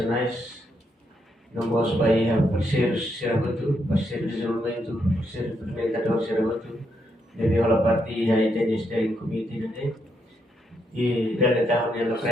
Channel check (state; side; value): normal; both; correlation 0.79